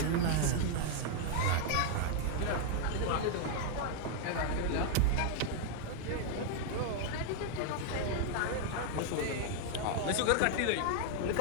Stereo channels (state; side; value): different; both; correlation 0.00